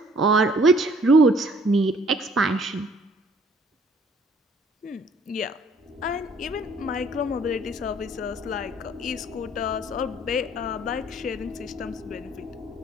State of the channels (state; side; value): normal; both; correlation 0.59